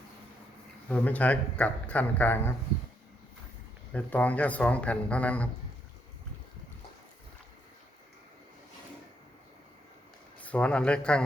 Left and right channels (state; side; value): normal; both; correlation 0.75